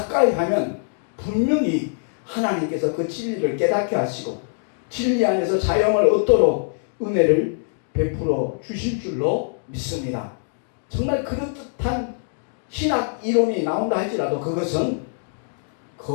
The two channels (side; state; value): right; silent; digital silence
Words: 하면 분명히 하나님께서 그 진리를 깨닫게 하시고 진리 안에서 자영을 얻도록 은혜를 베풀어 주실 줄로 믿습니다. 정말 그럴듯한 신학 이론이 나온다 할지라도 그것은